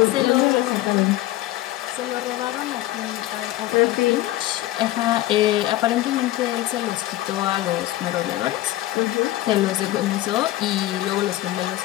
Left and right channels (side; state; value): right; quieter; 15.9 dB